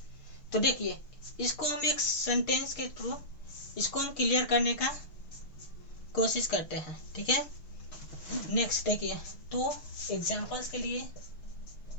तो देखिए इसको हम एक सेंटेंस के थ्रू इसको हम क्लियर करने का कोशिश करते हैं, ठीक है। नेक्स्ट देखिए, तो एग्जांपल्स के लिए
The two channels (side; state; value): right; late; 6.5 ms